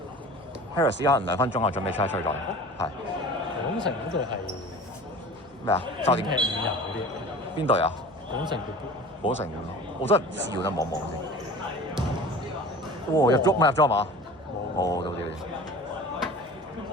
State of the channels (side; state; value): right; noise; hum, 28 dB below the sound